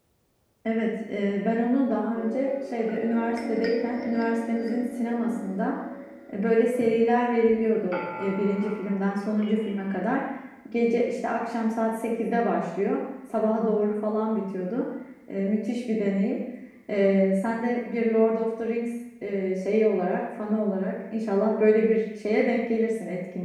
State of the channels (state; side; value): identical; both; correlation 1.00